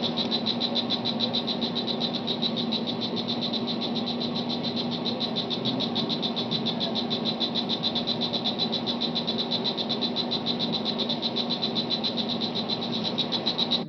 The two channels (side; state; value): both; identical; correlation 1.00